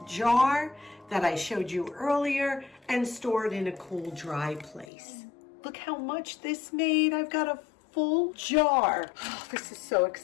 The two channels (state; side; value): drops out; right; at 4.9 s